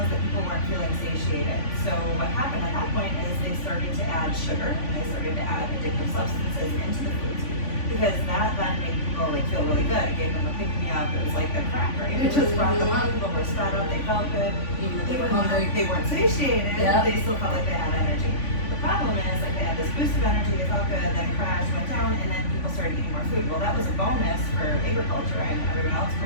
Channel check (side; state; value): right; late; 3.5 ms